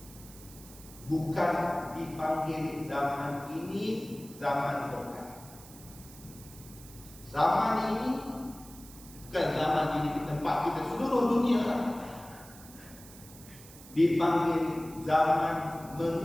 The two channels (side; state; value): right; noise; hiss, 19 dB below the sound